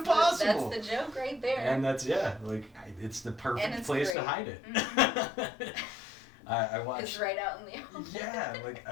That's the joke right there. And that's it's the perfect place to hide it. Mm-hmm. I watched. It's right out in the open. Yeah, like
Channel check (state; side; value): drops out; right; at 4.2 s